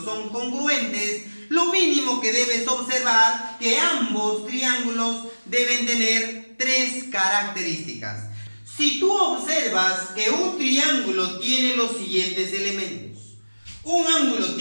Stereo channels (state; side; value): inverted; both; correlation -1.00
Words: son congruentes, lo mínimo que debes observar que ambos triángulos deben tener tres características. Si tú observas que un triángulo tiene los siguientes elementos: un ángulo